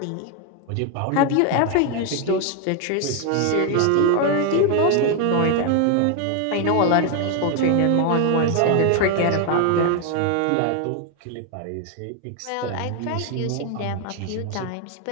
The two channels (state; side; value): different; both; correlation 0.01